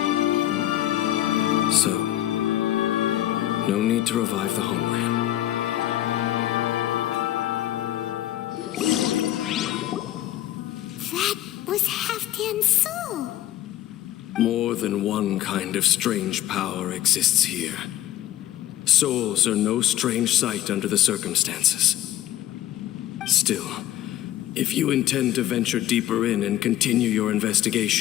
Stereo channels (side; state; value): right; quieter; 13.0 dB